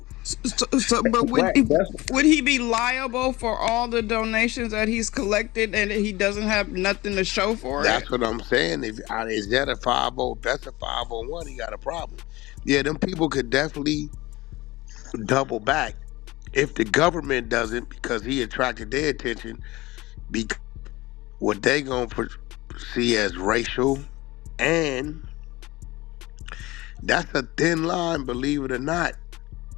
But Right. That's would he be liable for all the donations that he's collected and he doesn't have nothing to show for it? That's what I'm saying. If is that a 50? That's a 501. He got a problem. Yeah, them people could definitely double back if the government doesn't, because he attracted their attention. Because what they gonna see as racial, and that's a thin line, believe it or not,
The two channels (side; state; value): right; quieter; 20.1 dB